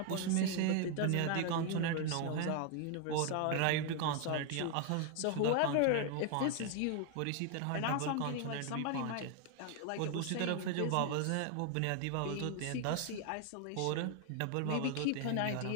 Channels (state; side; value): different; both; correlation 0.00